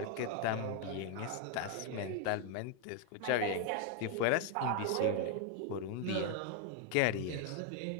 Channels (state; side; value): different; both; correlation 0.01